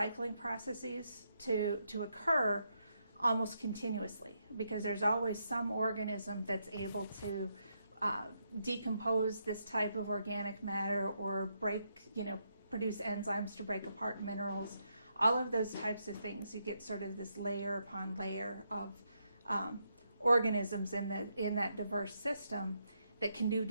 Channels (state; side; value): inverted; both; correlation -0.79